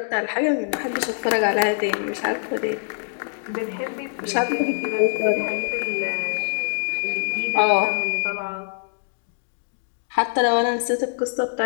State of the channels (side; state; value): right; silent; digital silence